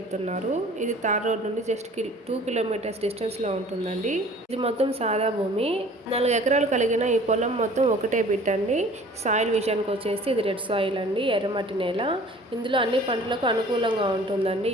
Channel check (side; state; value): both; normal; correlation 0.48